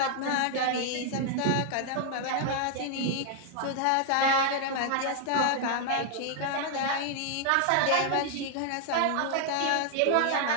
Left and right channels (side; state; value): both; different; correlation 0.00